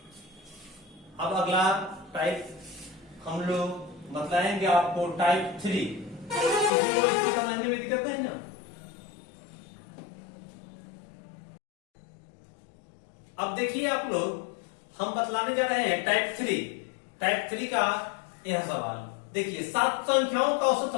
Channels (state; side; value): drops out; right; at 6.7 s